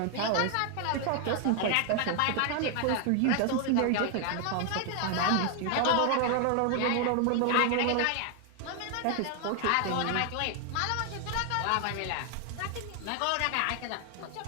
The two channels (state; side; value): different; both; correlation 0.00